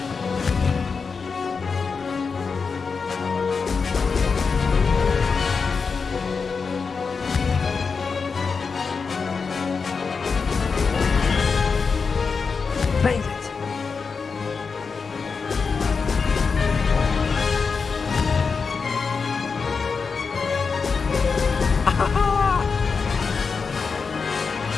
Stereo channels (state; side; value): quieter; right; 5.1 dB